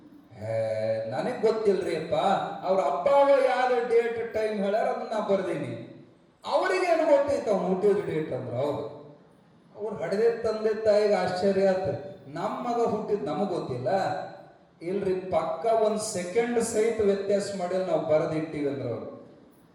ನನಗ್ ಗೊತ್ತಿಲ್ರಿ ಅಪ್ಪ, ಅವ್ರ ಅಪ್ಪ ಯಾವ ಡೇಟ್ ಟೈಮ್ ಹೇಳ್ಯಾರ ಅದನ್ನ ನಾ ಬರ್ದೀನಿ, ಅವ್ರಿಗೇನು ಗೊತ್ತೈತ ಅವ್ನು ಹುಟ್ಟಿದ ಡೇಟ್ ಅಂದ್ರು. ಅವ್ರು ಹಡೆದೇ ತಂದೆ ತಾಯಿಗೆ ಆಶ್ಚರ್ಯ ಆತ, ನಮ್ಮ ಮಗ ಹುಟ್ಟಿದ್ ನಮಗ್ ಗೊತ್ತಿಲ್ಲ. ಇಲ್ರಿ, ಪಕ್ಕ ಒಂದ್ ಸೆಕೆಂಡ್ ಸಹಿತ ವ್ಯತ್ಯಾಸ ಮಾಡಿ ನಾವು ಬರೆದಿಟ್ಟಿವಿ ಅಂದ್ರ ಅವ್ರು.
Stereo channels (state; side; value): identical; both; correlation 1.00